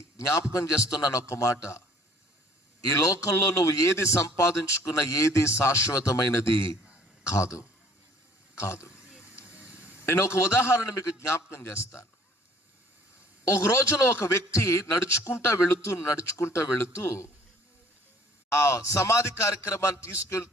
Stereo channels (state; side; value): normal; both; correlation 0.56